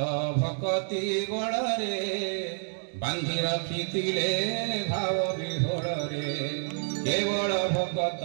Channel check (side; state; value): left; silent; digital silence